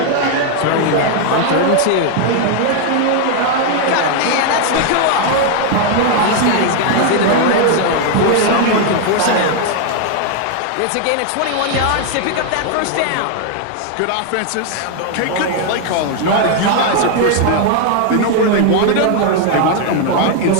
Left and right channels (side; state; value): both; different; correlation 0.00